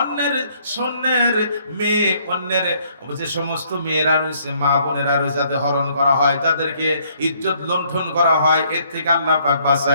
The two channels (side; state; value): both; inverted; correlation -0.66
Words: সন্ন্যের মেয়ে, অন্যের যে সমস্ত মেয়েরা রয়েছে, মা বোনেরা রয়েছে, যাদের হরণ করা হয়, যাদেরকে ইজ্জত লুণ্ঠন করা হয়, এর থেকে আল্লাহ পাক